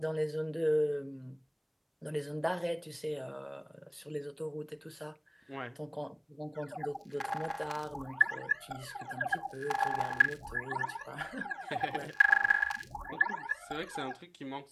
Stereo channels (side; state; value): both; identical; correlation 1.00